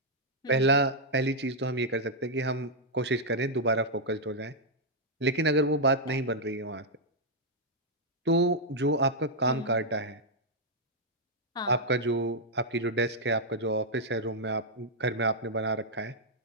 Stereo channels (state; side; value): normal; both; correlation -0.06